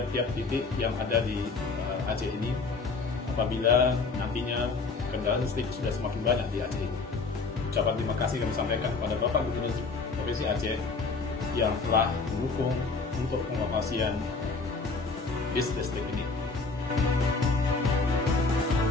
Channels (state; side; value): quieter; right; 4.1 dB